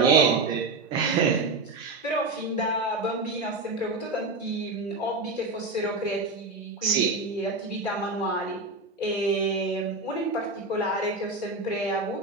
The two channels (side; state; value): left; quieter; 3.3 dB